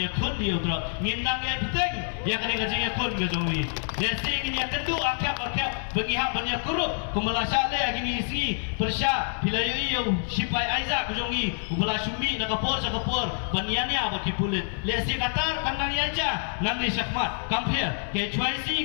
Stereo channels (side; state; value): right; silent; digital silence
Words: kun yu drop ngindang ya peteng ya kene ka jing kun ga jong wi ya sing ya kendu akap bengi ha banya kurup kumala sale agini isi persya bilayu yu sipai aiza ka jong wi kumala sumi na ka por sa ka por baniani aba ki pulit le si katar kandang ya ja nang ni syakmat kampir ke